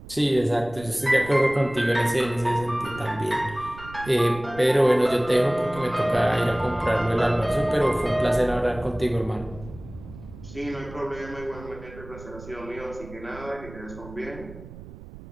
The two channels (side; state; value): right; noise; rumble, 16 dB below the sound